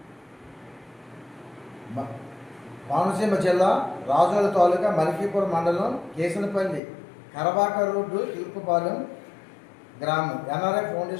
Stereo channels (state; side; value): drops out; right; at 6.8 s